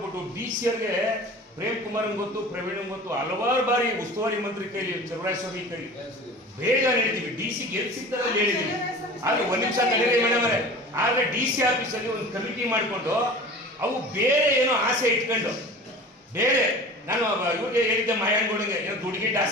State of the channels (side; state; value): both; normal; correlation 0.39